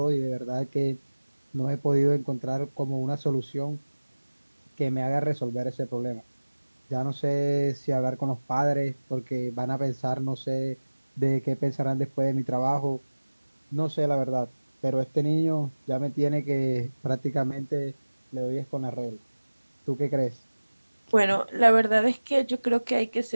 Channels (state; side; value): inverted; both; correlation -1.00